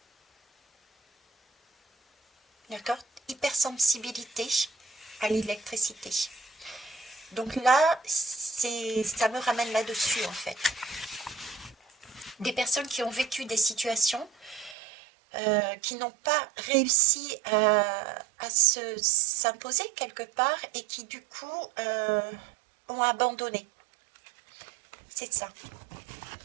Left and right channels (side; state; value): left; drops out; at 14.8 s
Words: D'accord? Hypersensibilité à l'électricité. Donc là, ça me ramène là-dessus en fait. Des personnes qui ont vécu des situations qui n'ont pas réussi à s'imposer quelque part et qui du coup ont abandonné. C'est ça.